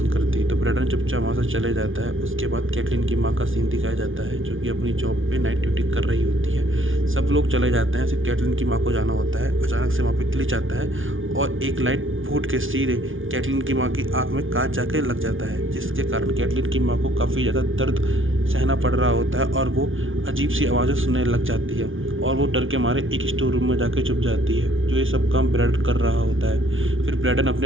करती। तो ब्रैडन चुपचाप वहाँ से चले जाता है। उसके बाद कैटलीन की माँ का सीन दिखाया जाता है जो कि अपनी जॉब पे नाइट ड्यूटी कर रही होती है। सब लोग चले जाते हैं, सिर्फ कैटलीन की माँ को जाना होता है। अचानक से वहाँ पे ग्लिच आता है और एक लाइट फूट के सीधे कैटलीन की माँ की आँख में कांच जाके लग जाता है, जिसके कारण कैटलीन की माँ को काफ़ी ज़्यादा दर्द सहना पड़ रहा होता है और वो अजीब सी आवाज़ें सुनने लग जाती है और वो डर के मारे एक स्टोर रूम में जाके छुप जाती है, जो ये सब काम ब्रैडन कर रहा होता है। फिर ब्रैडन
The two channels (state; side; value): late; left; 0.57 ms